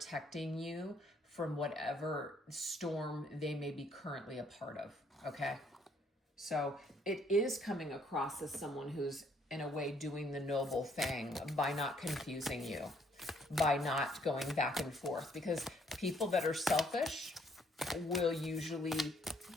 you from whatever storm they may be currently a part of, okay? So it is coming across as someone who's in a way doing the noble thing by not confusing you, by not going back and forth, because people that are selfish will usually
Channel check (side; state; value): both; normal; correlation 0.66